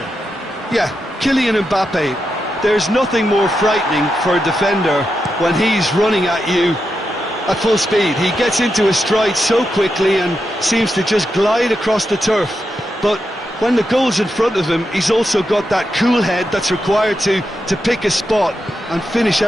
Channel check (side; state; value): both; normal; correlation 0.87